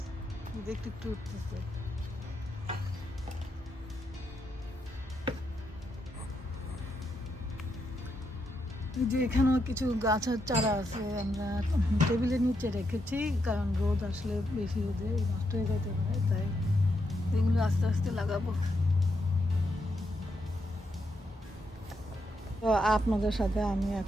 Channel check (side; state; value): both; normal; correlation 0.81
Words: একটু একটু উঠতেছে। যে এখানেও কিছু গাছের চারা আছে, আমরা টেবিলের নিচে রেখেছি, কারণ রোদ আসলে বেশি রোদে নষ্ট হয়ে যেতে পারে, তাই এগুলো আস্তে আস্তে লাগাবো। তো আপনাদের সাথে আমি